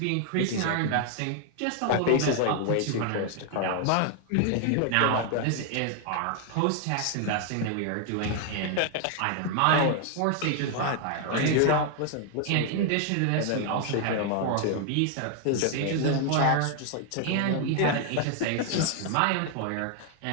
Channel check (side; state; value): both; different; correlation 0.00